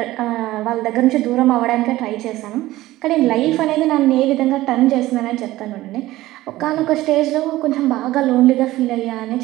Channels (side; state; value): left; quieter; 16.7 dB